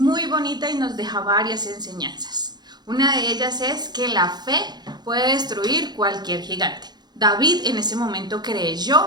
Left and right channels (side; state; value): left; late; 0.20 ms